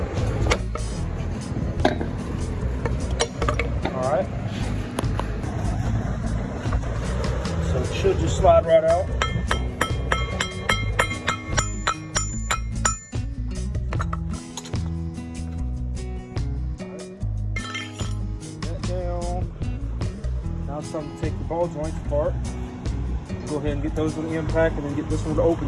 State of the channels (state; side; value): identical; both; correlation 1.00